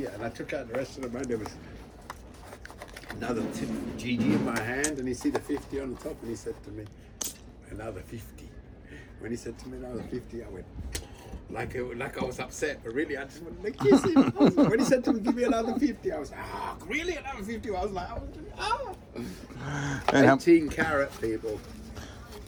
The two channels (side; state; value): both; identical; correlation 1.00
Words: and I took out the rest of the money. There was another GG in my hand, and he see the 50 on the top, and he said to me, another 50. When he said to me another 50, I went, like I was upset, but really I just wanted to kiss him. When he said to me, give me another 50, I was like, really another 50? I was like, 18 carat, people.